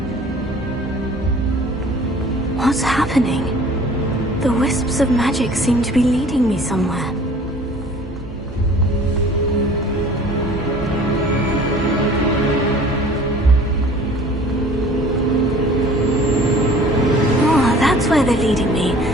What's happening? The wisps of magic seem to be leading me somewhere. Oh, that's where they're leading me.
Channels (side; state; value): both; normal; correlation 0.49